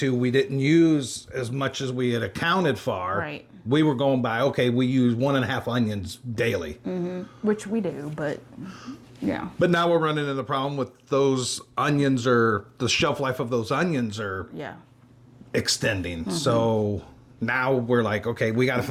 we didn't use as much as we had accounted for. Right. We were going by, okay, we use 1.5 onions daily. which we do, but yeah. But now we're running into the problem with those onions, or the shelf life of those onions are Yeah. extending. So now we're like, okay, we got to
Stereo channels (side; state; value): both; identical; correlation 1.00